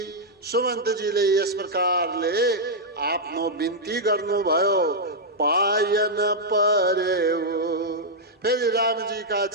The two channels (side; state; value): both; normal; correlation -0.06